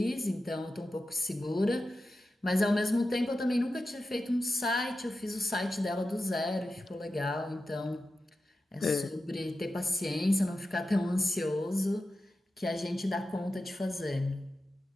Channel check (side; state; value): both; normal; correlation 0.91